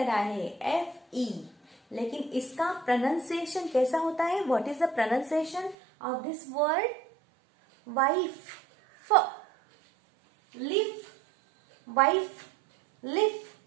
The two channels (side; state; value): left; drops out; at 5.8 s